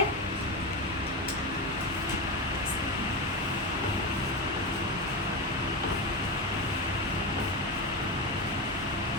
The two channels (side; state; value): both; normal; correlation 0.17